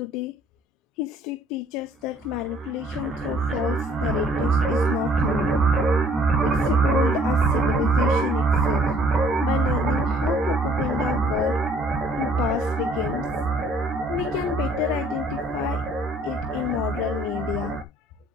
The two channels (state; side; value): normal; both; correlation 0.59